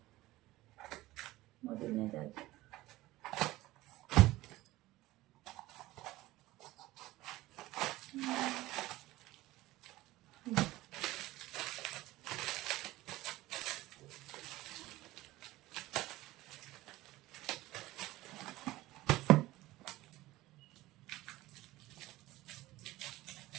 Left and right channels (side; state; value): left; quieter; 17.8 dB